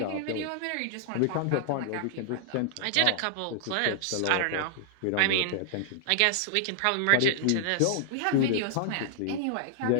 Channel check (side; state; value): both; different; correlation -0.01